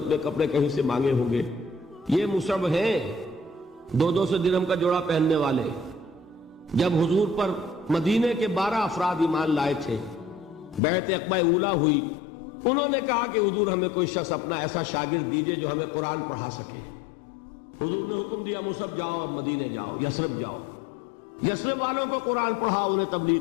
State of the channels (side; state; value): right; drops out; at 10.8 s